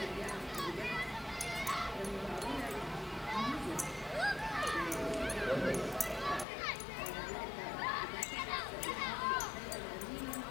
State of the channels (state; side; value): drops out; right; at 6.5 s